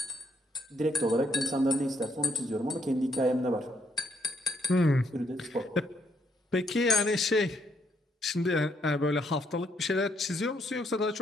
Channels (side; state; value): both; normal; correlation 0.72